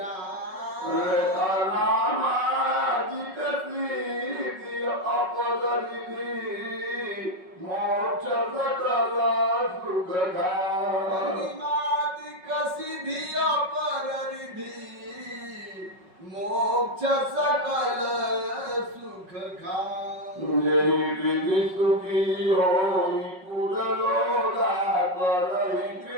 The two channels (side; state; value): left; late; 5.4 ms